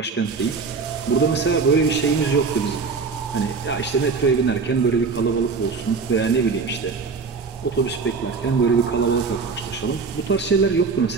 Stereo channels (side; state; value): left; quieter; 4.8 dB